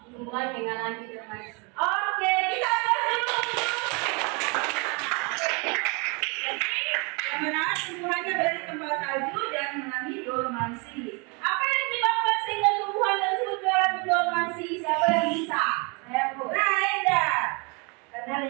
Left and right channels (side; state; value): left; quieter; 31.6 dB